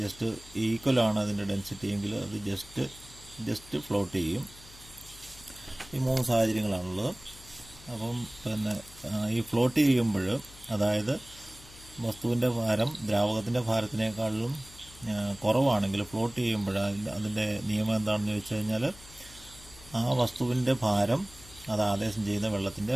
ഈക്വലാണ് അതിൻ്റെ ഡെൻസിറ്റി എങ്കിൽ അത് ജസ്റ്റ് ഫ്ലോട്ട് ചെയ്യും. ഈ 3 സാഹചര്യങ്ങളാണുള്ളത്. അപ്പം ഈ ഫ്ലോട്ട് ചെയ്യുമ്പോൾ, അതായത് വസ്തുവിൻ്റെ ഭാരം ദ്രാവകത്തിൻ്റെ ഭാരത്തിനേക്കാളും കുറവാണെങ്കിൽ ഫ്ലോട്ട് ചെയ്യുമ്പോൾ അതിൻ്റെ നിയമം എന്താണെന്ന് ചോദിച്ചു കഴിഞ്ഞാൽ, ആ വസ്തുവിൻ്റെ ഭാരം അത് ആദേശം ചെയ്യുന്ന വെള്ളത്തിൻ്റെ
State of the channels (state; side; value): noise; left; hum, 20 dB below the sound